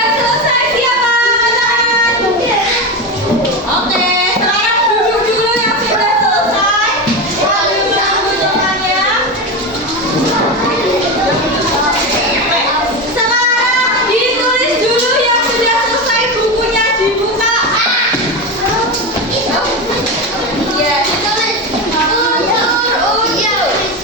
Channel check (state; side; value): normal; both; correlation 0.18